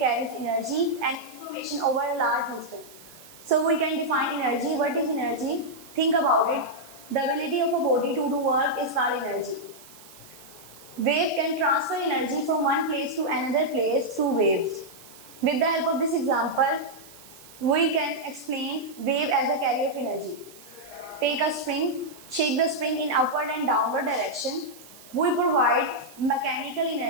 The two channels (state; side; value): noise; right; hiss, 21 dB below the sound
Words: energy and information over a large distance. So we can define energy. What is energy? Think about it. The ability of a body to do work is called energy. Wave can transfer energy from one place to another place through waves. With the help of this example, we can explain wave as a carrier of energy. Take a spring, shake the spring in upward and downward direction. We provide mechanical